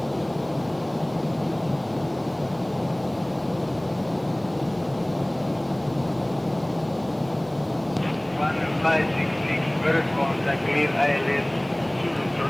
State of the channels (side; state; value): right; noise; hiss, 29 dB below the sound